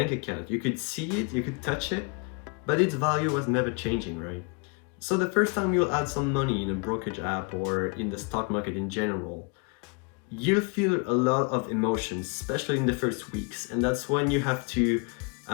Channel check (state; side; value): quieter; right; 32.5 dB